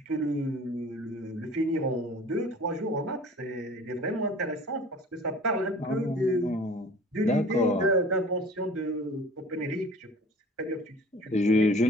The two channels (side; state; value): both; normal; correlation 0.45